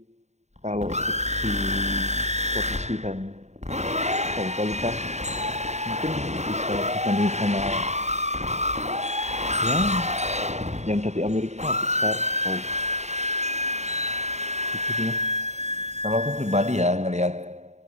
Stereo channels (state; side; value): late; left; 0.33 ms